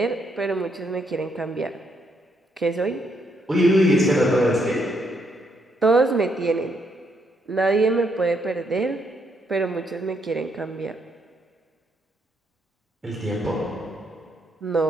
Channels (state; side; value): normal; both; correlation 0.75